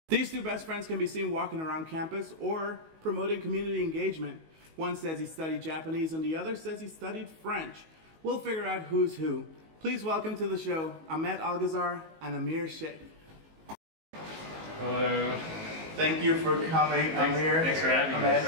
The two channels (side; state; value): left; late; 19 ms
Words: These two best friends can be seen walking around campus or promoting community engagement. One says he studied Japanese and the other says he studied French. We'll figure out who's who. Please welcome to the show Ahmed Algazar and Aamir Sheikh. Hello. Thank you for coming, Aamir. Thanks for having me.